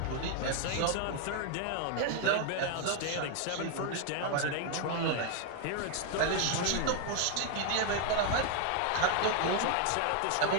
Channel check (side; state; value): both; different; correlation 0.00